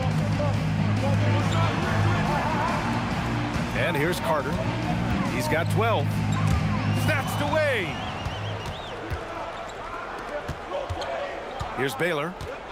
And here's Carter. He's got 12. Snatched away. Here's Baylor.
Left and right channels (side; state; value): both; identical; correlation 1.00